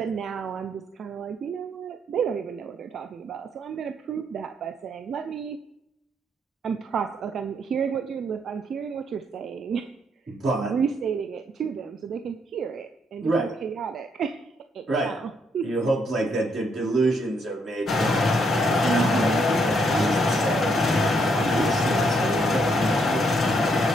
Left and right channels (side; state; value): both; normal; correlation 0.73